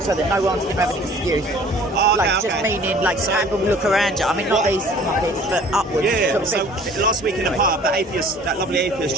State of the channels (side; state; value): both; normal; correlation 0.51